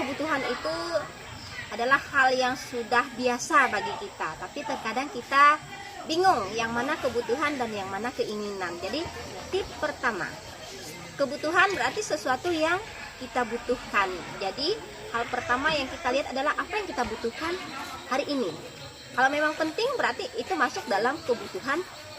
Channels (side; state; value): both; identical; correlation 1.00